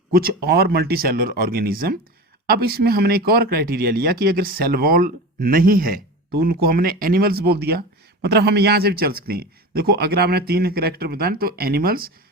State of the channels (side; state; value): both; normal; correlation 0.29